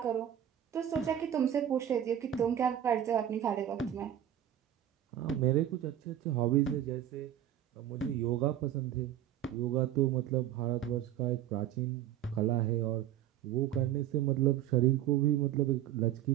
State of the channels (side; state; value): left; quieter; 11.2 dB